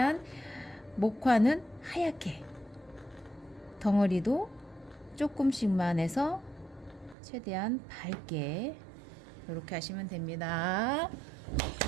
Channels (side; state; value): left; drops out; at 7.2 s